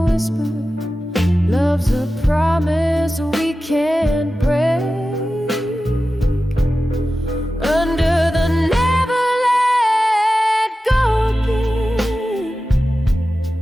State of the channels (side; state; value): both; normal; correlation 0.94